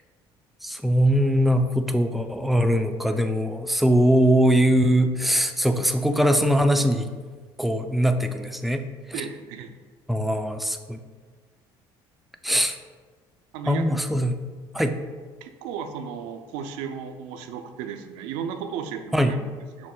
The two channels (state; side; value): normal; both; correlation 0.81